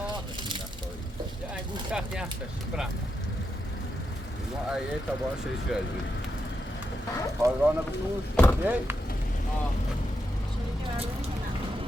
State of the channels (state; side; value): normal; both; correlation 0.84